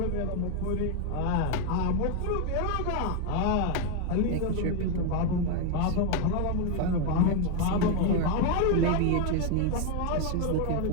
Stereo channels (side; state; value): both; different; correlation 0.01